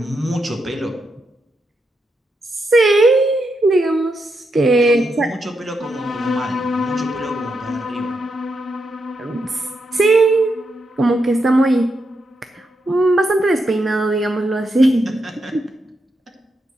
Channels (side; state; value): both; normal; correlation 0.83